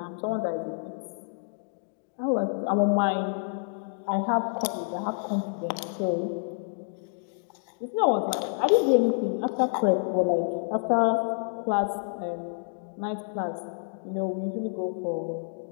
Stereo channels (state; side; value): silent; right; digital silence